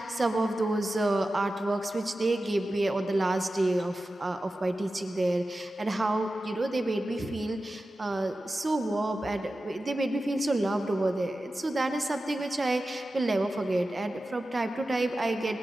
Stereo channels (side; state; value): both; normal; correlation 0.94